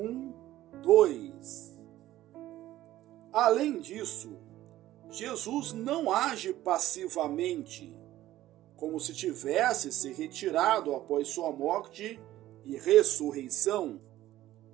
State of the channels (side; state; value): left; quieter; 14.6 dB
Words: Além disso, Jesus não age passivamente, como se tivesse se retirado após sua morte e ressurreição.